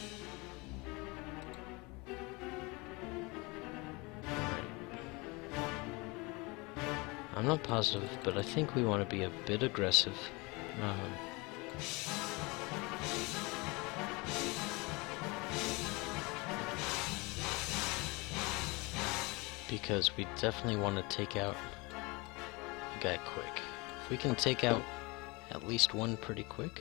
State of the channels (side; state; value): right; quieter; 26.2 dB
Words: I'm not positive, but I think we want to be a bit aggressive. Because we definitely want to take out a guy quick. If we can take out at least one pretty